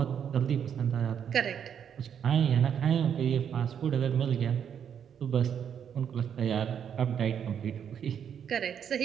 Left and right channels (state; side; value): quieter; left; 8.3 dB